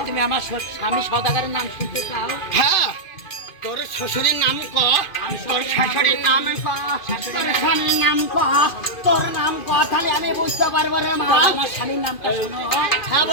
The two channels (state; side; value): late; right; 2.5 ms